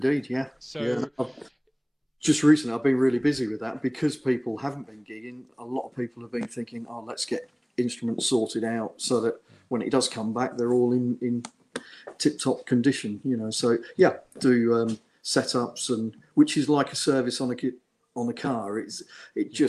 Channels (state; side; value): identical; both; correlation 1.00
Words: yeah. Yeah. So Just recently, I've been really busy with that because people haven't been gigging. A lot of people have been thinking, "Oh, let's get instruments sorted out so that when it does come back, they're all in tip-top condition." So yeah, do setups, and which is like a service on a car. It